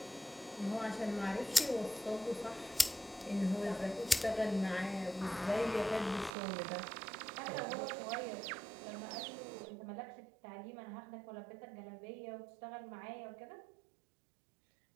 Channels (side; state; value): left; drops out; at 6.3 s